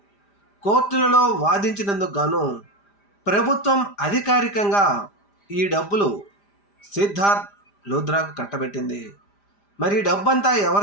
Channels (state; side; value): late; right; 5.0 ms